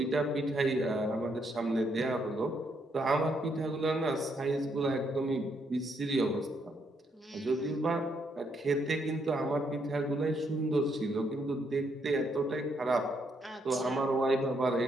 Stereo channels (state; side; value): normal; both; correlation 0.74